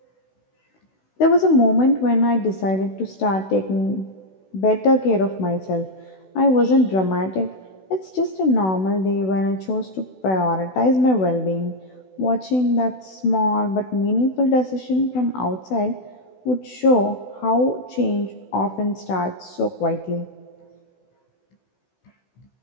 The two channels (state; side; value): late; right; 16 ms